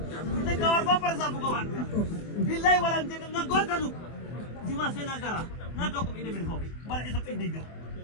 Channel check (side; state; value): right; late; 24 ms